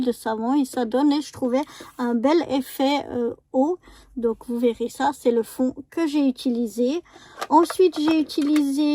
de savon, et ça donne, je trouvais, un bel effet eau. Donc vous verrez ça, c'est le fond que j'ai utilisé. Ensuite, j'ai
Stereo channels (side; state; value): both; identical; correlation 1.00